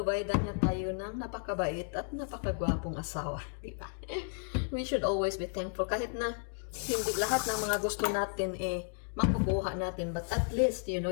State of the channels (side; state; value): right; silent; 56 dB below the other